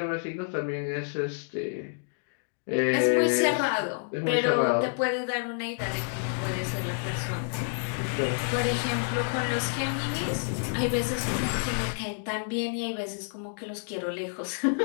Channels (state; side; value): silent; right; digital silence